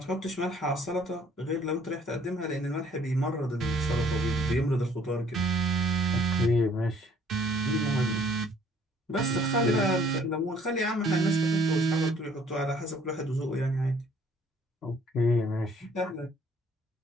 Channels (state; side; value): normal; both; correlation 0.59